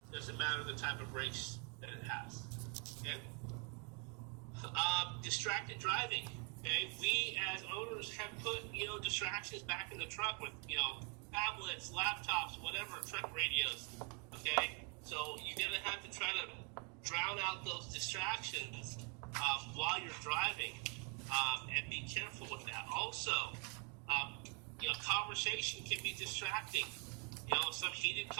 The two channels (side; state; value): left; quieter; 35.6 dB